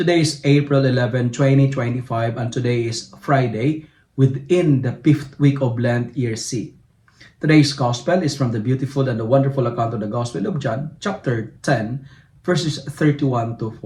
is April 11, 2025, and today is Friday within the 5th week of Lent, year C. Today's Gospel is from the beautiful and the wonderful account of the Gospel of John, chapter 10, verses 31 to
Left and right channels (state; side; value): identical; both; correlation 1.00